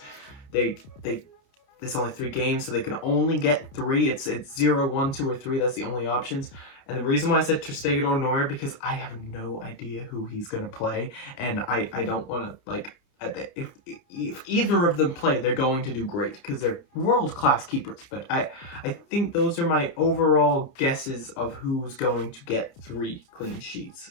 there's only 3 games, so they can only get 3. It's 0, 1, 2, or 3. That's the only options. And the reason why I said Ter Stegen or Neuer, because I have no idea who he's going to play. And I don't want to, like, if either of them play, they're going to do great because they're world-class keepers. But I think those are my overall guesses of who's going to get 3 clean sheets,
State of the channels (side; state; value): right; late; 29 ms